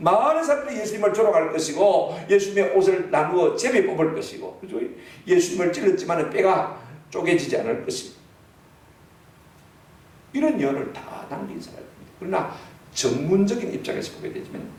사람들이 예수님을 조롱할 것이고 예수님의 옷을 나누어 제비 뽑을 것이고, 그죠? 예수님을 찔렀지만 뼈가 쪼개지지 않을 것이고, 이런 예언을 다 남긴 사람입니다. 그러나 전문적인 입장에서 보게 되지만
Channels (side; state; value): both; identical; correlation 1.00